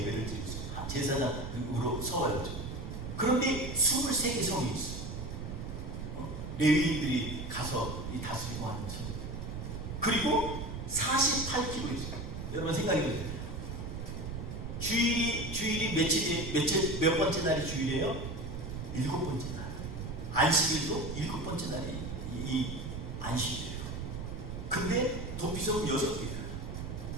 드리고 있어요. 제사장으로 서와요. 그런데 23개 성이 있어요. 레위인들이 가서 다스리고 하는 성. 그리고 48km 있어요. 여러분 생각해 보세요. 주일이 몇 번째 날이 주일이에요? 7번째 날. 안식일도 7번째 날이 이 안식일이에요. 근데 도피성은 6개예요.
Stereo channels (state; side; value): noise; right; rumble, 6 dB below the sound